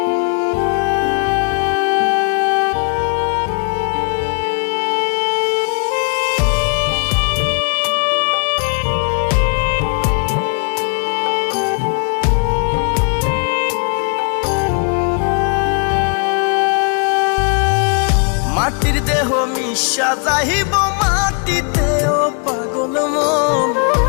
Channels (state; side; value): quieter; right; 39.8 dB